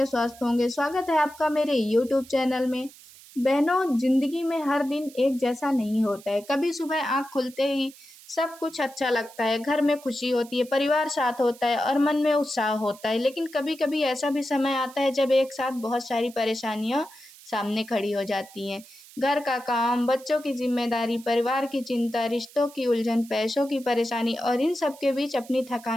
स्वस्थ होंगे। स्वागत है आपका मेरे यूट्यूब चैनल में। बहनों, जिंदगी में हर दिन एक जैसा नहीं होता है। कभी सुबह आँख खुलते ही सब कुछ अच्छा लगता है, घर में खुशी होती है, परिवार साथ होता है और मन में उत्साह होता है। लेकिन कभी कभी ऐसा भी समय आता है जब एक साथ बहुत सारी परेशानियां सामने खड़ी हो जाती हैं। घर का काम, बच्चों की जिम्मेदारी, परिवार की चिंता, रिश्तों की उलझन, पैसों की परेशानी और इन सब के बीच अपनी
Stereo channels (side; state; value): right; noise; hiss, 21 dB below the sound